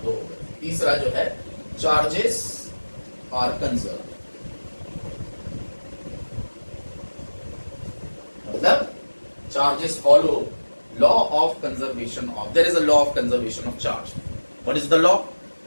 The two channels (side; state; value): both; inverted; correlation -1.00